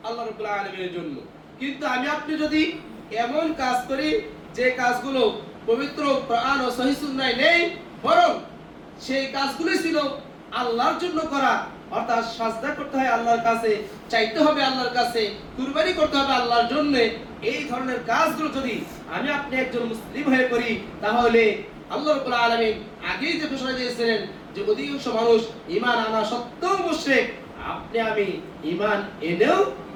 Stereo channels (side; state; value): both; identical; correlation 1.00